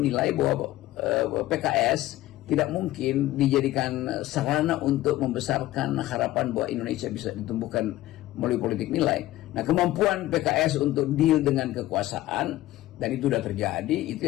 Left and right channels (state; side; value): quieter; right; 15.7 dB